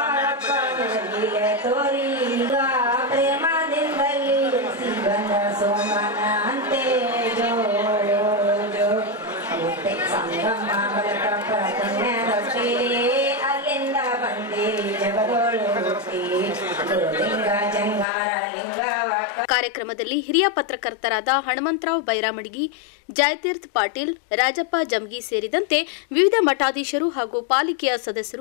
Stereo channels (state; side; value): drops out; right; at 18.1 s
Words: ನಿನ್ನ ಲೀಲೆ ತೋರಿ, ಈಗ ಪ್ರೇಮದಿಂದಲಿ ಬಂದ ಸೋಮನ ಅಂತೆ ಜೋ ಜೋ. ಸಂಗಮ ಬಲಕ ಪುಣ್ಯದೊಟ್ಟಿ, ಅಲ್ಲಿಂದ ಬಂದಿರಿ ಜಗದೋಳು ಹುಟ್ಟಿ, ಗುರುಲಿಂಗ ಜಂಗಾರ ಲಿಂಗವ. ಕಾರ್ಯಕ್ರಮದಲ್ಲಿ ಹಿರಿಯ ಪತ್ರಕರ್ತರಾದ ಹನುಮಂತರಾವ್ ಬೈರಾಮಡಿಗಿ, ಜಯತೀರ್ಥ ಪಾಟೀಲ್, ರಾಜಪ್ಪ ಜಮಗಿ ಸೇರಿದಂತೆ ವಿವಿಧ ಮಠಾಧೀಶರು ಹಾಗೂ ಪಾಲಿಕೆಯ